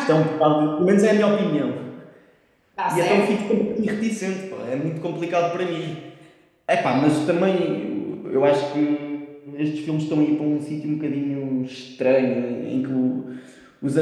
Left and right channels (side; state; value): both; identical; correlation 1.00